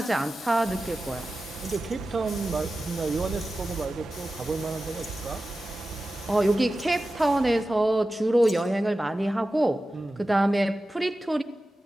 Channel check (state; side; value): normal; both; correlation 0.94